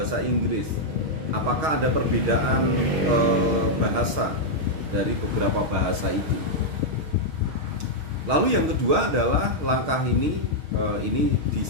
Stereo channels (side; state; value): left; late; 6.4 ms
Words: Inggris. Apakah ada perbedaan bahasa dari beberapa bahasa itu? Lalu yang kedua adalah langkah ini di